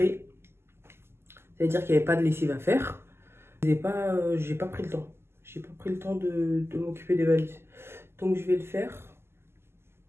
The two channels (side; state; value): left; late; 0.12 ms